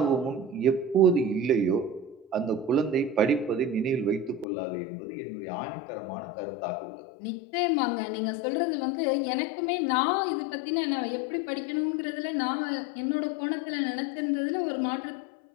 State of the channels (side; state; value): right; drops out; at 4.5 s